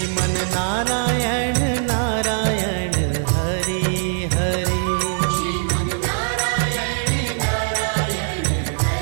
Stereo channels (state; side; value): silent; left; 59 dB below the other